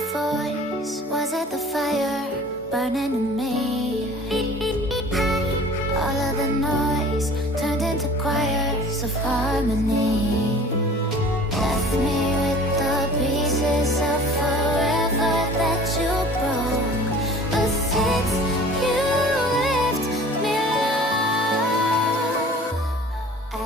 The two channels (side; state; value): both; normal; correlation 0.46